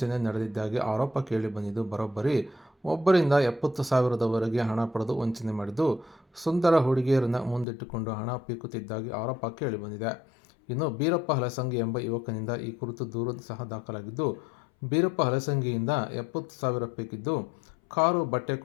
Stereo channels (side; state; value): right; drops out; at 7.7 s